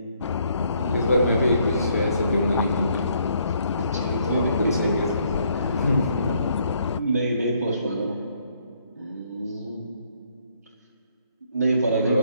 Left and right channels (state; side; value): inverted; both; correlation -0.69